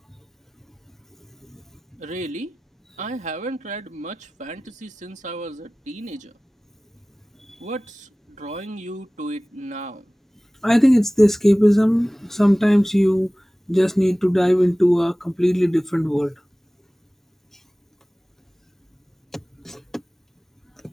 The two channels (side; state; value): both; normal; correlation 0.98